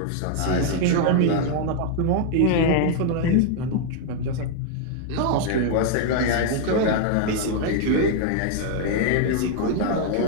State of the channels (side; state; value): both; different; correlation 0.00